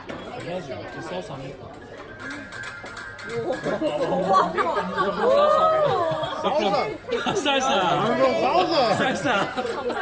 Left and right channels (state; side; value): identical; both; correlation 1.00